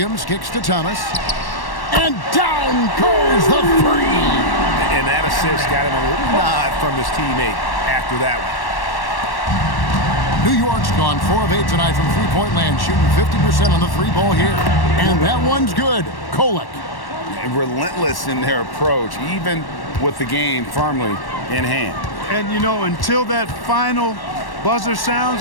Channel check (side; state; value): right; late; 1.1 ms